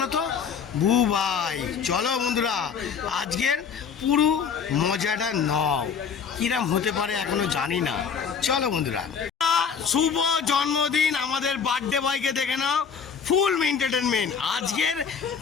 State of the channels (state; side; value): quieter; right; 6.6 dB